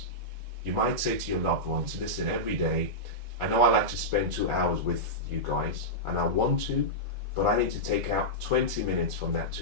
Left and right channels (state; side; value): late; left; 1.4 ms